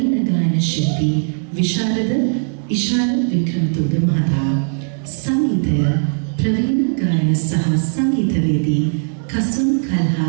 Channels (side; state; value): left; silent; 58 dB below the other